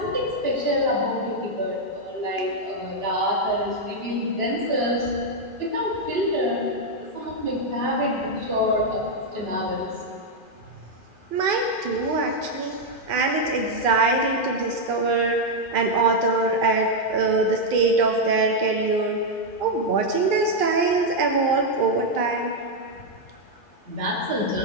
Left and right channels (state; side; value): late; right; 2.4 ms